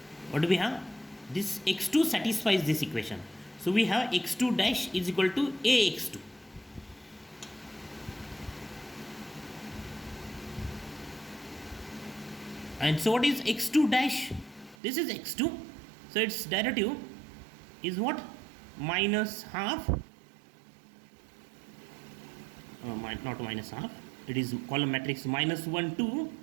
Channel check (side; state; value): left; drops out; at 14.8 s